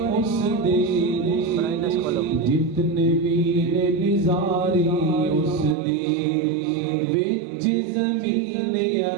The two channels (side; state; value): left; drops out; at 5.8 s